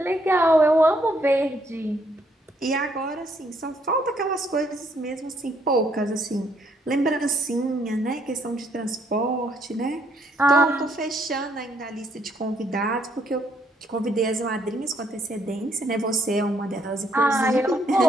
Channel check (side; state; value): both; normal; correlation 0.70